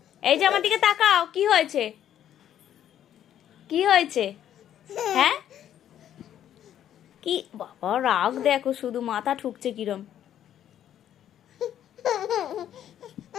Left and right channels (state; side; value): quieter; right; 10.7 dB